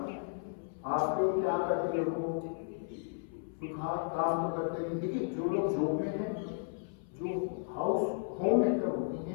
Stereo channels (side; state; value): right; silent; 55 dB below the other